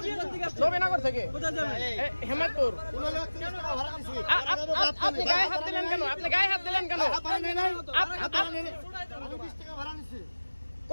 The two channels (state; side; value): inverted; both; correlation -1.00